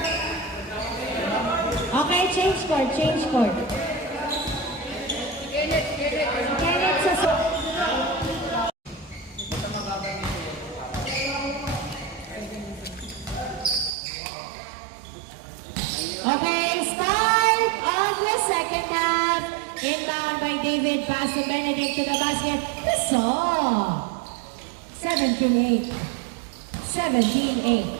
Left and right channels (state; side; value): drops out; left; at 14.0 s